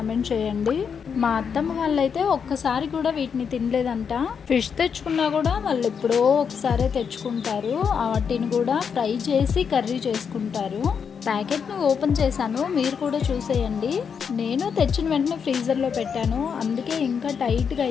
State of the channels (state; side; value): quieter; right; 6.7 dB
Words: చేయండి. మా అత్తమ్మ వాళ్ళైతే ఒక్కసారి కూడా వీటిని తినలేదంట. ఫిష్ తెచ్చుకున్నా కూడా వాళ్ళు ఎప్పుడో ఒకసారి తెచ్చుకుంటారు. వాటిని కూడా ఫ్రై చేసి కర్రీ చేసుకుంటారు. ప్యాకెట్ను ఓపెన్ చేశాను, మీరు కూడా చూసేయండి. నేను తెచ్చిన వెంటనే ఫ్రీజర్లో పెట్టాను, అందుకే ఇంకా టైట్గా